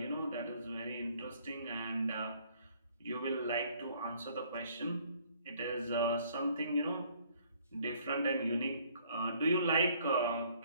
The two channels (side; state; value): both; inverted; correlation -0.61